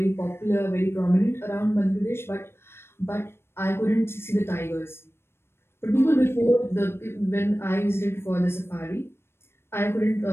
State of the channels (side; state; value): right; late; 0.12 ms